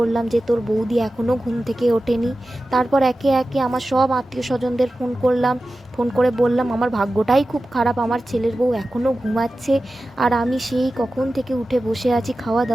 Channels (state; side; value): normal; both; correlation 0.94